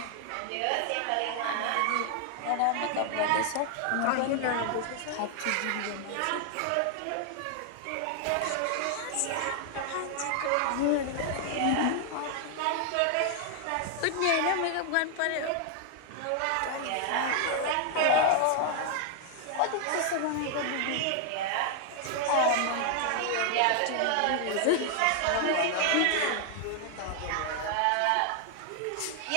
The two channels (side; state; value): both; different; correlation 0.00